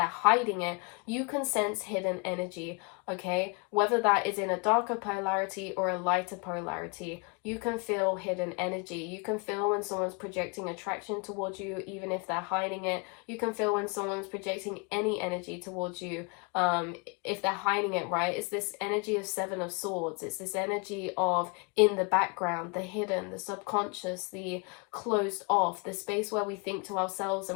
hiding it, you can sense hidden energy, okay? Whether that is in a darker polarity or a lighter polarity, you can feel hidden energy. You can feel when someone's projecting attraction towards you, even if they're hiding it. You can feel when someone's projecting any energy towards you, if they're hiding it, right? It's this energy of Seven of Swords. It's this energy of in the background, the hidden, the subconscious, the closed off, the space where we think to ourselves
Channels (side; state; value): right; quieter; 32.3 dB